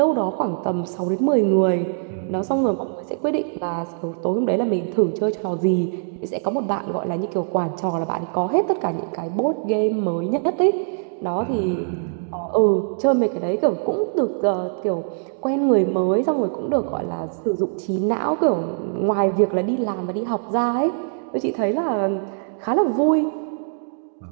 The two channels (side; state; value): left; silent; digital silence